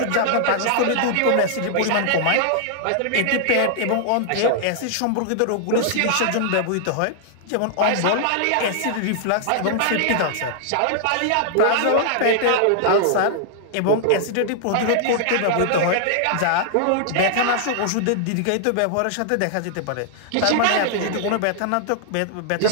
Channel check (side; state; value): both; different; correlation -0.01